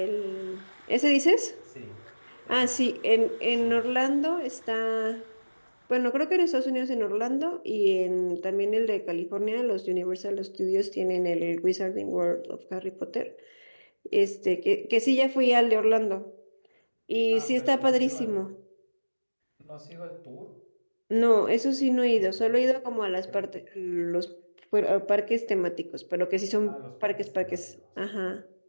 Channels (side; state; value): both; inverted; correlation -1.00